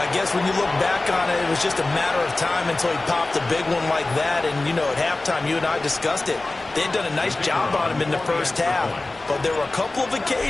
I guess when you look back on it, it was just a matter of time until he popped a big one like that. And, you know, at halftime, you and I discussed it. They had done a nice job on him in the first half. But there were a couple of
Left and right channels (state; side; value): quieter; right; 3.0 dB